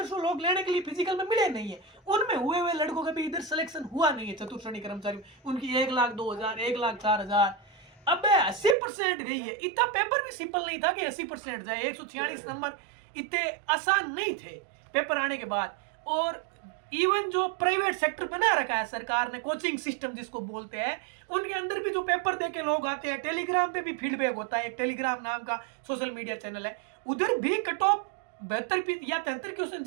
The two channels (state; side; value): drops out; left; at 8.8 s